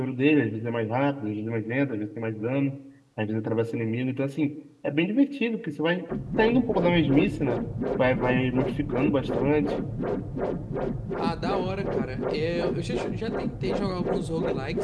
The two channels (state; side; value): identical; both; correlation 1.00